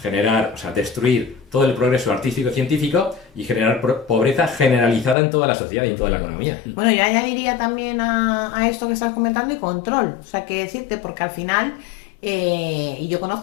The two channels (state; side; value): drops out; right; at 5.2 s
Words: generar, o sea, destruir todo el progreso artístico y científico y generar pobreza generalizada en toda la sociedad y en toda la economía. Bueno, yo añadiría también a esto que estás comentando y control. O sea, que decirte, porque al final, y yo